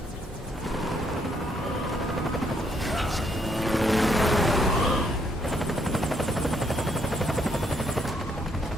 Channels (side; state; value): both; normal; correlation 0.72